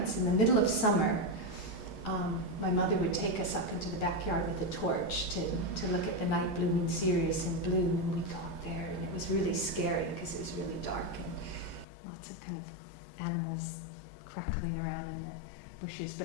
in the middle of summer, my mother would take us up into the backyard with a torch to look at the night blooming cereus in bloom, and we'd go up there, and it was really scary because it was really dark and lots of kind of animals crackling around in the bushes.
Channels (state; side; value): drops out; right; at 11.9 s